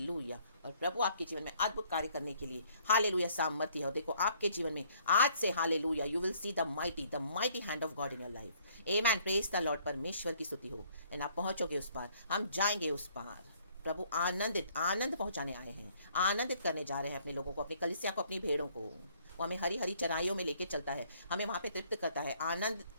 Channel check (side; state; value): both; inverted; correlation -0.63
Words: और प्रभु आपके जीवन में अद्भुत कार्य करने के लिए हालेलुया सामर्थ्य है। और देखो आपके जीवन में आज से hallelujah you will see the mighty hand of God in your life. Amen, praise the lord, परमेश्वर की स्तुति हो। एंड आप पहुंचोगे उस पार, हम जाएंगे उस पार। प्रभु आनंद पहुंचाने आए हैं, आनंदित करने जा रहे हैं अपने लोगों को, अपनी कलीसिया को, अपनी भेड़ों को। वो हमें हरी हरी चराइयों में लेके चलता है, हमें वहां पे तृप्त करता है,